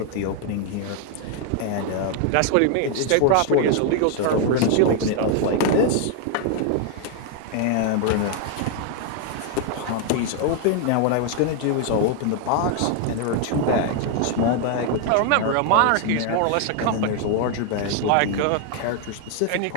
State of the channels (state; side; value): different; both; correlation 0.00